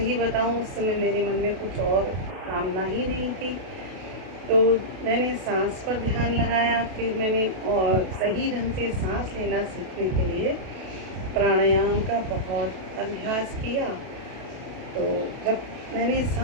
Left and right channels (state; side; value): late; left; 32 ms